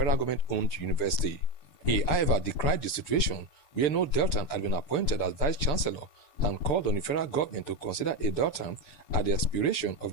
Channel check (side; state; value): right; late; 6.8 ms